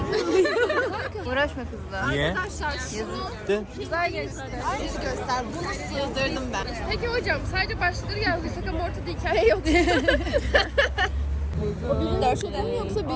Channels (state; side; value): identical; both; correlation 1.00